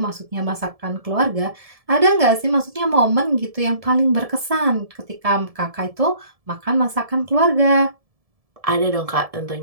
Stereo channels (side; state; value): left; late; 1.7 ms